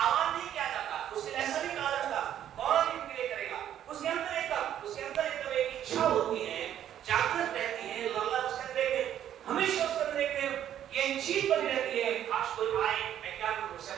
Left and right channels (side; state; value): left; quieter; 10.7 dB